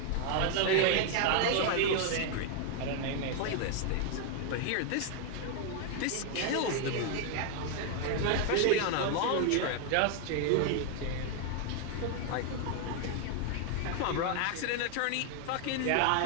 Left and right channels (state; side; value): different; both; correlation 0.00